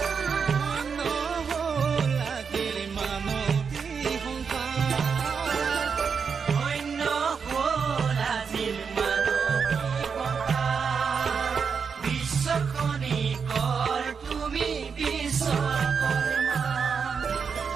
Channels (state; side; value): quieter; left; 6.0 dB